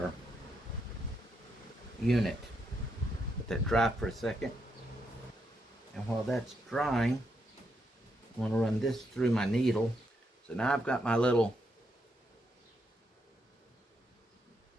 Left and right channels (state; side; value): normal; both; correlation 0.79